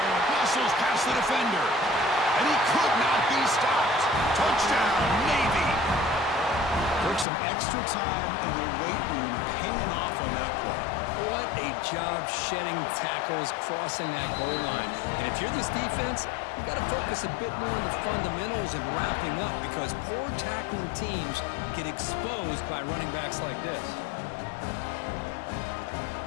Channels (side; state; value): right; drops out; at 7.2 s